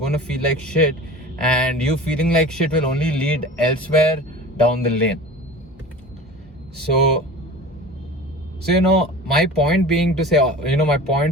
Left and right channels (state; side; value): normal; both; correlation 0.37